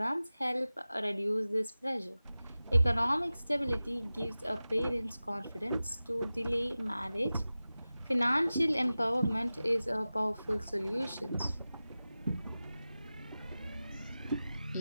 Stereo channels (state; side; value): inverted; both; correlation -0.96